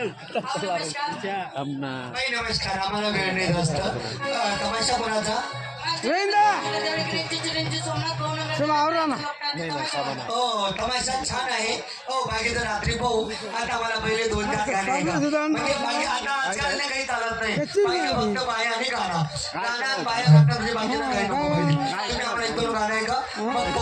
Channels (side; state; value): both; identical; correlation 1.00